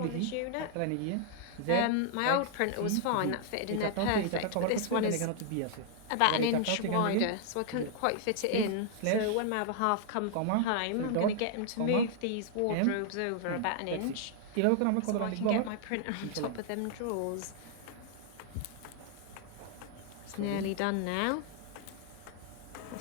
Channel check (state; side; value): different; both; correlation -0.01